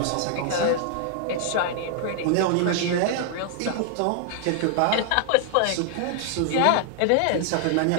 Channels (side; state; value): both; different; correlation 0.00